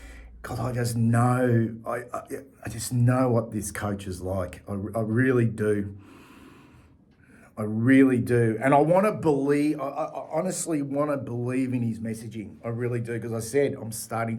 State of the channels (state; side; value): identical; both; correlation 1.00